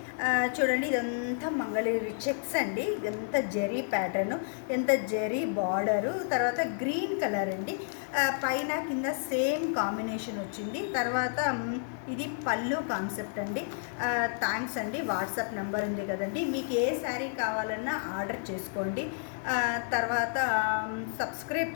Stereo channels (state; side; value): silent; right; 57 dB below the other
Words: చూడండి, ఇదంతా మంగళగిరి చెక్స్ అండి. ఇదంతా జరీ ప్యాటర్ను, ఎంత జరీ బార్డరు, తర్వాత గ్రీన్ కలర్ అండి. పైన కింద సేమ్ కాంబినేషన్ వచ్చింది. తర్వాత ఇది పళ్ళు కాన్సెప్ట్ అండి. థ్యాంక్స్ అండి. వాట్సాప్ నెంబర్ ఉంది కదండి, మీకు ఏ శారీ కావాలన్నా ఆర్డర్ చేసుకోండి. తర్వాత సబ్స్క్రైబ్